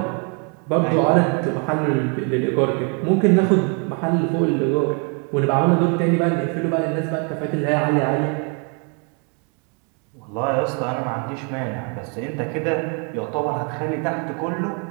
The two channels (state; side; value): quieter; left; 37.1 dB